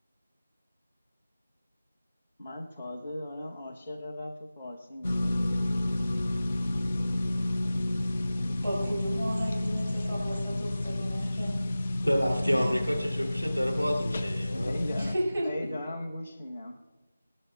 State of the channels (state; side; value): inverted; both; correlation -0.96